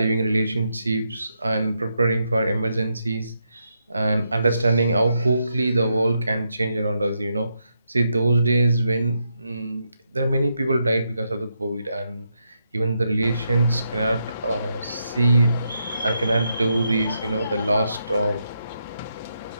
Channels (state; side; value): inverted; both; correlation -0.82